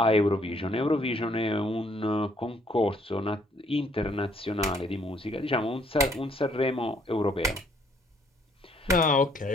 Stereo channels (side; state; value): both; normal; correlation 0.66